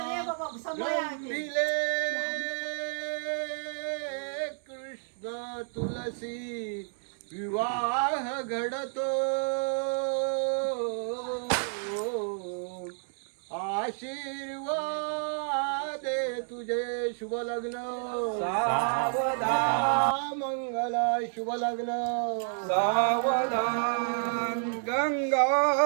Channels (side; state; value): left; silent; 58 dB below the other